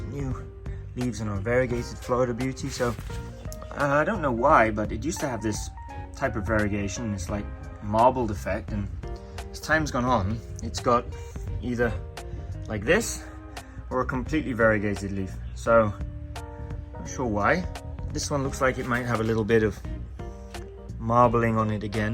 new leaves on our variegated Florida Beauty. So I don't know why, but it used to have this type of variegation, this like marbled effect, and as time's gone on, it's got either like this or a completely variegated leaf. So not sure why. This one looks like it might have a little bit of marbling on it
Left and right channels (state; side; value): identical; both; correlation 1.00